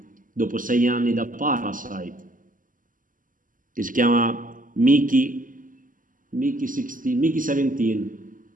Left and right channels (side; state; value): left; late; 0.39 ms